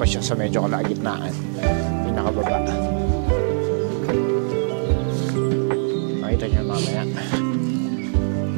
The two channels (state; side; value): silent; left; 64 dB below the other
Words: siya sa medyo kalagitnaan. Pinakababa. Makita nyo mamaya.